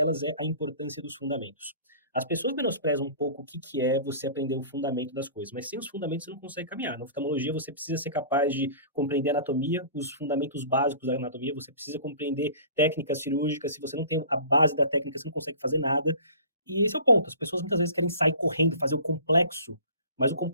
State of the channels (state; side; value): inverted; both; correlation -0.44